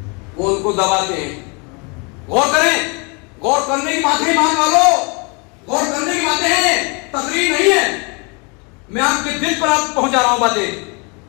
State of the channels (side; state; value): right; quieter; 32.2 dB